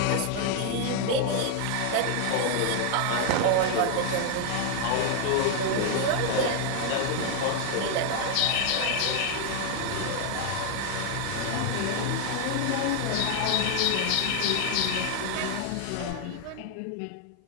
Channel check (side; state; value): both; different; correlation 0.00